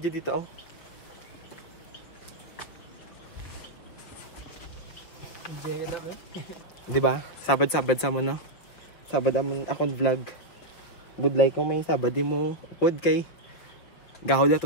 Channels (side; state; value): right; late; 6.1 ms